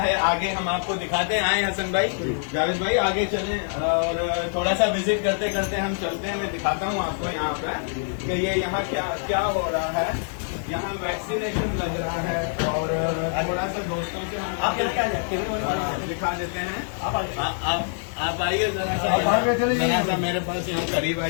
आगे हम आपको दिखाते हैं। आए हसन भाई, जावेद भाई आगे चलें और थोड़ा सा विजिट करते करते हम चलते हैं। मैं दिखाता हूँ आपको यहाँ पे कि ये यहाँ क्या क्या हो रहा है। यहाँ वैक्सीनेशन लग रहा है और थोड़ा सा दोस्तों से हम दिखा देते हैं। आप आइए जरा सा मेरे पास यहाँ करीब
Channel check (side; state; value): right; silent; digital silence